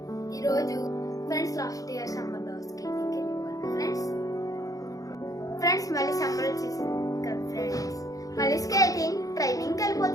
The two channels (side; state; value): right; late; 0.17 ms